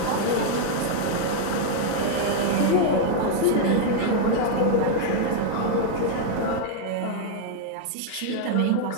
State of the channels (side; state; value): both; different; correlation 0.00